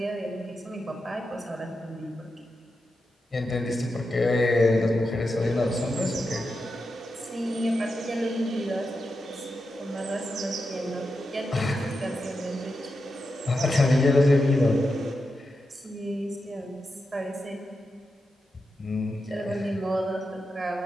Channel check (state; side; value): normal; both; correlation 0.88